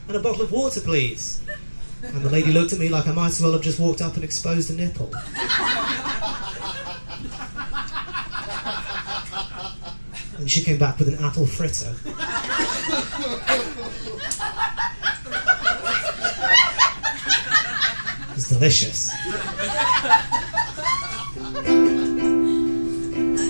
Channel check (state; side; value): inverted; both; correlation -1.00